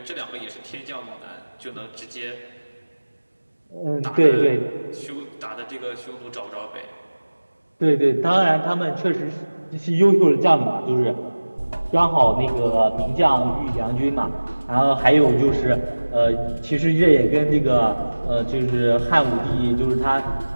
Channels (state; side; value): inverted; both; correlation -1.00